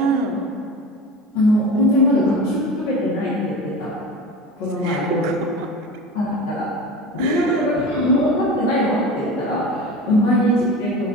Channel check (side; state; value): both; normal; correlation 0.32